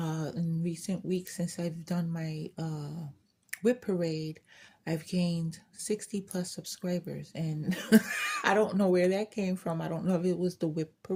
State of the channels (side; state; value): both; identical; correlation 1.00